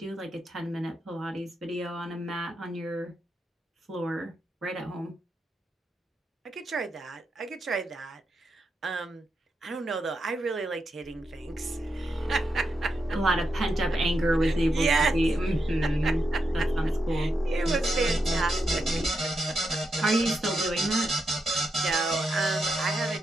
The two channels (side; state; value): both; normal; correlation 0.85